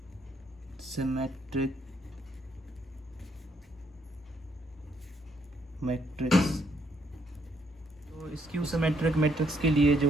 सिमेट्रिक मैट्रिक्स, तो स्क्यू सिमेट्रिक मैट्रिक्स के लिए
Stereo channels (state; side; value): normal; both; correlation 0.72